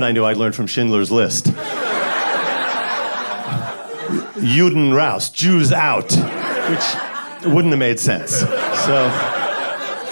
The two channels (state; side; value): inverted; both; correlation -1.00